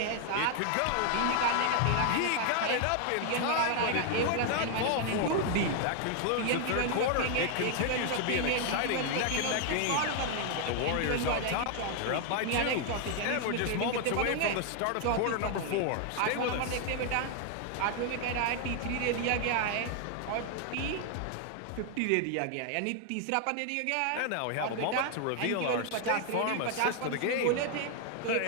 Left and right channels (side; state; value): both; different; correlation 0.00